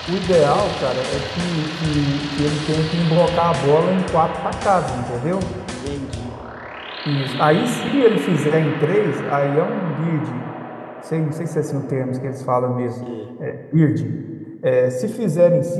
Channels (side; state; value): both; identical; correlation 1.00